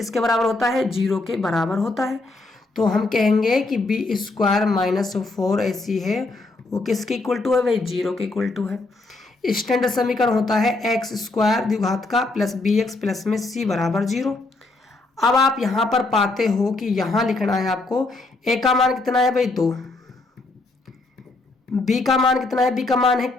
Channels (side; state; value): right; quieter; 3.2 dB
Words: बराबर होता है, 0 के बराबर होता है। तो हम कहेंगे कि बी स्क्वायर माइनस 4ac है वो किसके इक्वल टू है भाई, 0 के इक्वल टू है। स्टैंडर्ड समीकरण होता है एक्स स्क्वायर द्विघात का प्लस bx प्लस में c बराबर 0। अब आप यहां पर पाते हो कि यहां लिखना है आपको a का मान कितना है भाई 2, b का मान कितना है, b का मान है